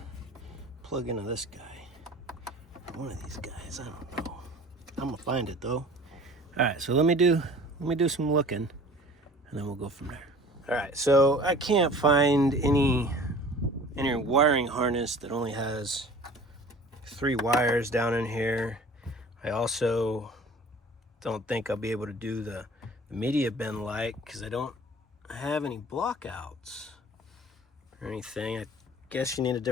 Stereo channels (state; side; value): normal; both; correlation 0.45